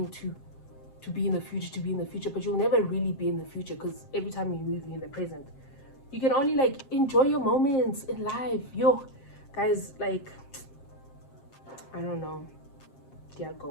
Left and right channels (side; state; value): right; late; 7.5 ms